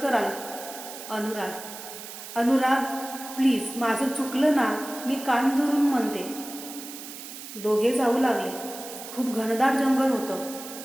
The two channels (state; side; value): noise; right; hiss, 12 dB below the sound